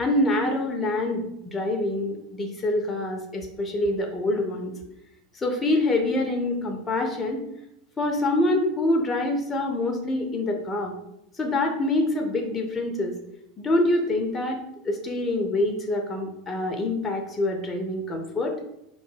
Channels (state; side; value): normal; both; correlation 0.43